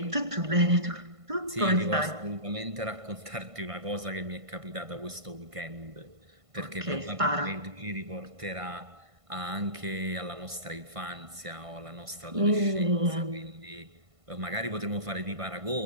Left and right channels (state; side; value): late; left; 1.5 ms